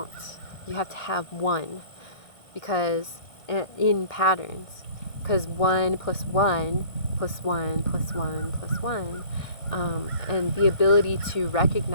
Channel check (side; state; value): right; late; 1.5 ms